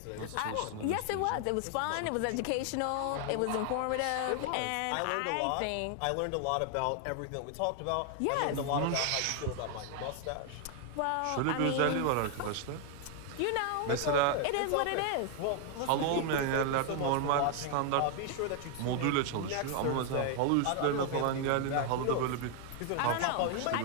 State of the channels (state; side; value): different; both; correlation 0.00